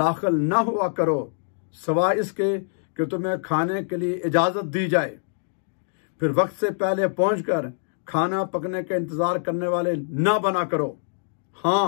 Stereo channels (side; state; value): right; silent; digital silence